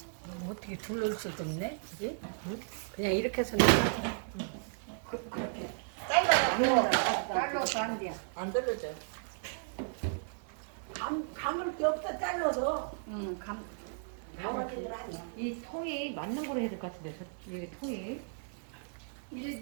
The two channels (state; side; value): silent; left; 55 dB below the other